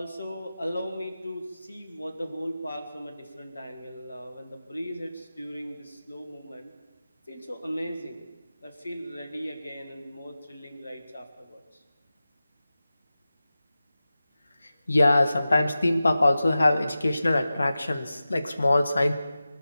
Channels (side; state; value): both; inverted; correlation -0.94